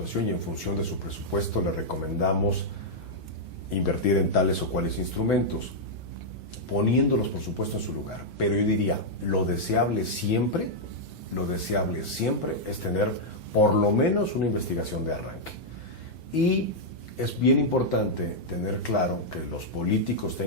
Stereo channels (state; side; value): normal; both; correlation -0.05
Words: y en función de su presupuesto le recomendamos invertir en tales o cuales instrumentos, poniéndolos, por supuesto, en su lugar. Pero yo diría, lo deseable siempre es tener por lo menos una investigación de arranque. Y es bien importante tener claro, que los políticos